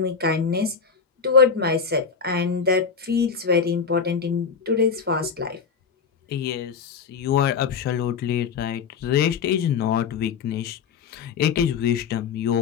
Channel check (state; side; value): quieter; right; 6.0 dB